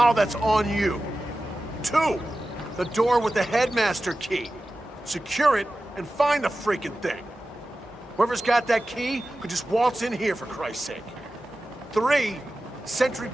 that's on you. 2, the door with the headmaster key. Secure it and find the freaking thing. Whoever's got that key could just waltz in here, for Christ's sake. 3, sentry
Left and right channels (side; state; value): both; normal; correlation 0.94